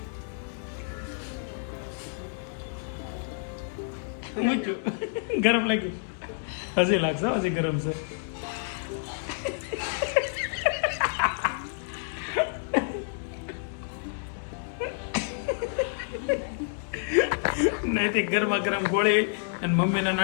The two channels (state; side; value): silent; right; 59 dB below the other